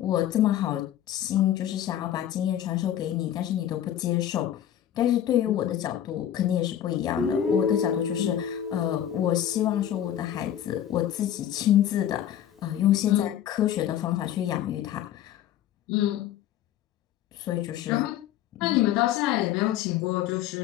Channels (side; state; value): right; quieter; 11.0 dB